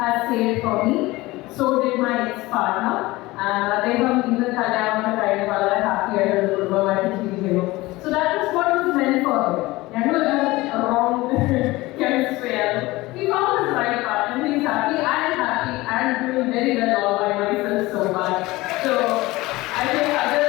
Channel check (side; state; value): right; quieter; 20.0 dB